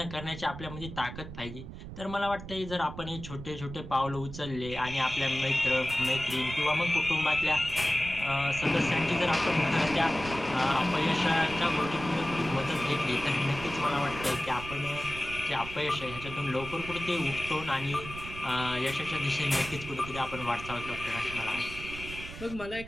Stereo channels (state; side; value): noise; right; rumble, 11 dB below the sound